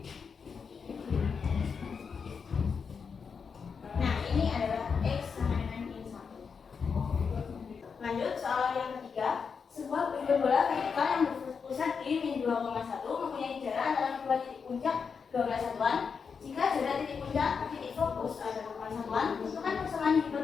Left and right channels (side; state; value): right; quieter; 5.9 dB